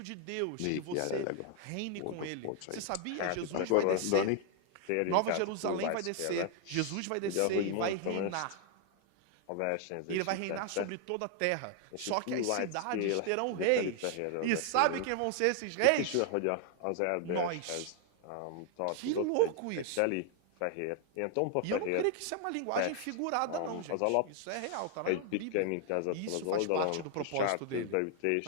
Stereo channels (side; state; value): both; different; correlation 0.00